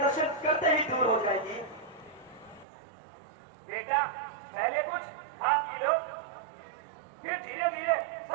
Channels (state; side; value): drops out; left; at 2.7 s